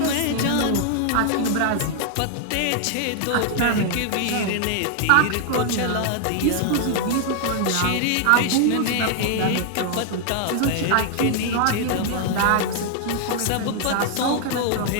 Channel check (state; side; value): different; both; correlation 0.00